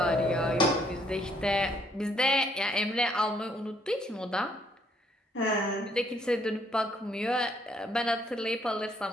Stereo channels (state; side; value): normal; both; correlation 0.68